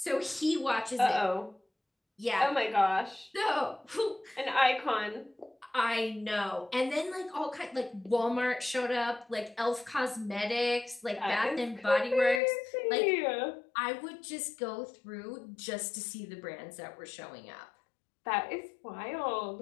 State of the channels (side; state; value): right; drops out; at 12.4 s